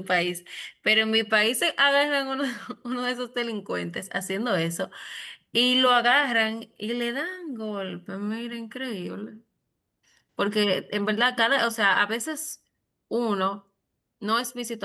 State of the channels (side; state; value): both; identical; correlation 1.00